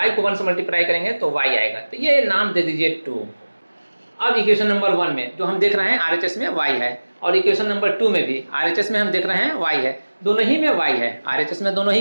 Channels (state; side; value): inverted; both; correlation -1.00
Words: को 1 से मल्टीप्लाई करेंगे तो y आएगा, तो ये नाम दे दीजिए 2। अब इक्वेशन नंबर 1 में जो हम देख रहे हैं RHS में y है, और इक्वेशन नंबर 2 में भी RHS में हम देख रहे हैं y है, दोनों ही में y है, RHS में दोनों ही